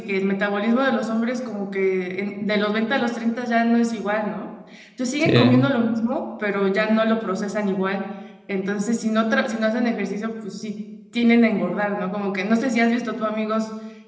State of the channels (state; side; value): identical; both; correlation 1.00